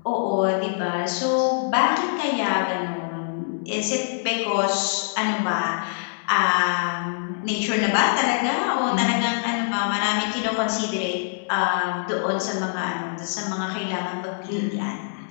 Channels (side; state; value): right; silent; digital silence